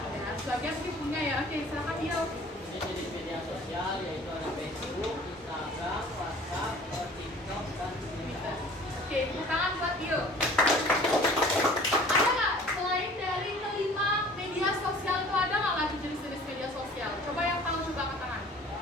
Ada. Sebagian sih punya ya. Oke, silakan Dio. Jenis media sosial yaitu ada Facebook, Instagram, WhatsApp, TikTok, dan Twitter. Oke, tepuk tangan buat Dio. Ada nggak selain dari kelima media sosial itu ada nggak lagi jenis-jenis media sosial? Coba yang tahu coba angkat tangan.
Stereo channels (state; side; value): normal; both; correlation 0.48